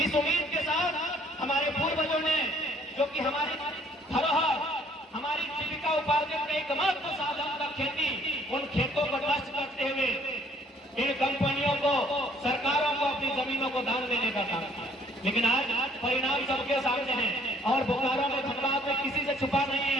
इस उम्मीद के साथ हमारे पूर्वजों ने, जो कि हमारी धरोहर, हमारी जीविका उपार्जन का एकमात्र साधन था खेती, उन खेतों को नष्ट करते हुए इन कंपनियों को, सरकारों को अपनी जमीनों को दान देने का काम किया। लेकिन आज परिणाम सबके सामने है और बोकारो में, धनबाद में किसी से छुपा नहीं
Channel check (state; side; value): normal; both; correlation 0.60